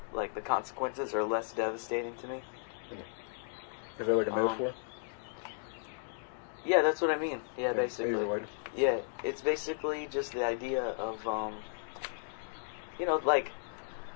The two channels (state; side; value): silent; right; digital silence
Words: like the consequences are less devastating to me. Is that like a metaphor? Yeah, that's what I mean. Yeah, basically. Maybe Yeah, it's basically just the idea of